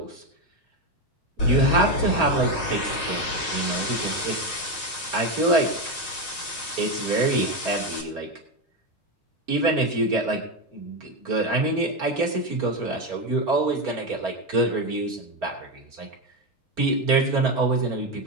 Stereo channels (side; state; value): both; normal; correlation 0.11